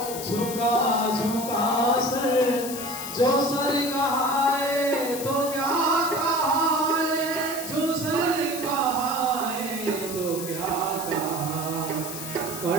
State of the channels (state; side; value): noise; left; hiss, 8 dB below the sound